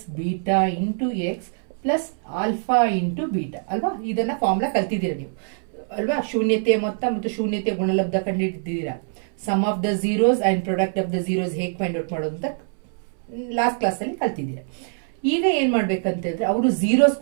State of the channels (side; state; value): left; silent; 63 dB below the other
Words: beta into x plus alpha into beta ಅಲ್ವಾ? ಇದನ್ನ ಫಾರ್ಮುಲಾ ಕಲ್ತಿದ್ದೀರಾ ನೀವು ಅಲ್ವಾ? ಶೂನ್ಯತೆಯ ಮೊತ್ತ ಮತ್ತು ಶೂನ್ಯತೆಯ ಗುಣಲಬ್ಧ ಕಂಡುಹಿಡಿದಿದ್ದೀರಾ. Sum of the zeros and product of the zeros ಹೇಗೆ ಫೈಂಡ್ ಔಟ್ ಮಾಡೋದು ಅಂತ ಲಾಸ್ಟ್ ಕ್ಲಾಸ್ ಅಲ್ಲಿ ಕಲ್ತಿದ್ದೀರಾ. ಈಗ ಏನ್ ಮಾಡ್ಬೇಕಂತಂದ್ರೆ, ಅವರು ಝೀರೋಸ್